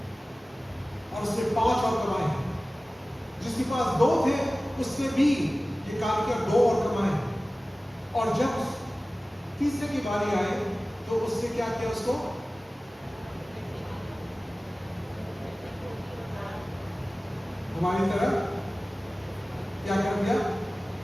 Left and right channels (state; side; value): normal; both; correlation 0.97